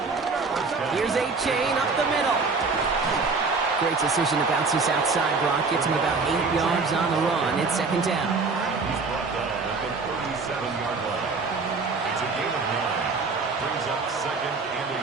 Here's A-Chain up the middle. Great decision to bounce this outside. Brock gets him about 8 yards on the run. It's second down. He's brought down at the 37-yard line. It's a gain of 9. Brings up second and a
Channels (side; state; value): left; quieter; 4.3 dB